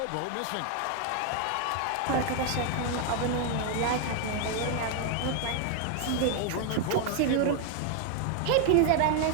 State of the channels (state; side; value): different; both; correlation 0.00